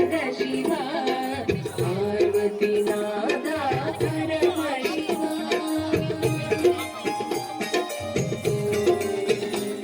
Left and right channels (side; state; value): both; identical; correlation 1.00